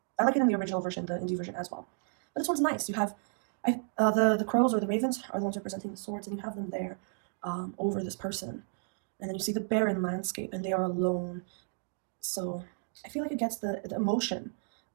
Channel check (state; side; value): silent; left; 56 dB below the other